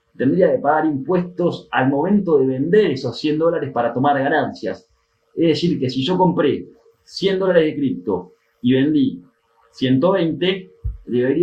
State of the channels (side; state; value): both; identical; correlation 1.00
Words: tendría que pagar impuestos al momento de vender esos $100 para tomar ganancias. Es decir, que si yo compré $100 de cripto y vendí 120,